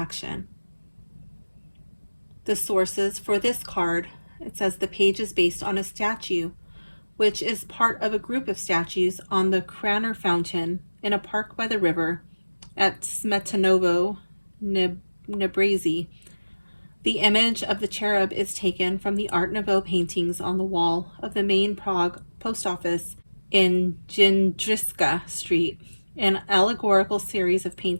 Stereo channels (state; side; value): inverted; both; correlation -1.00